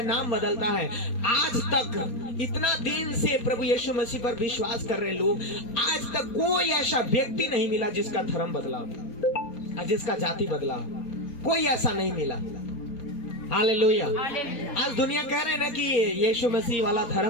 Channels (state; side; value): late; right; 4.3 ms